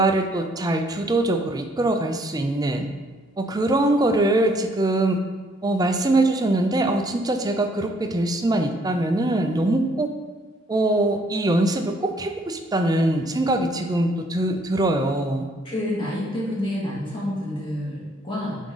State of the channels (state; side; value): normal; both; correlation 0.66